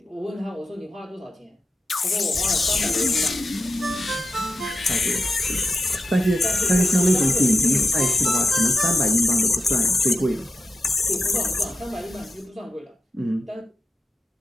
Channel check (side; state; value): both; normal; correlation 0.88